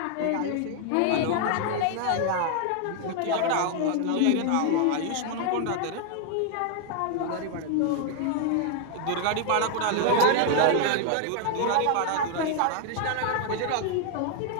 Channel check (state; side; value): different; both; correlation 0.00